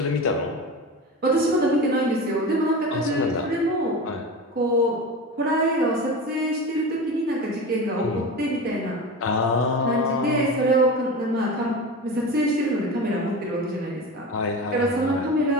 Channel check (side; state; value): both; normal; correlation 0.28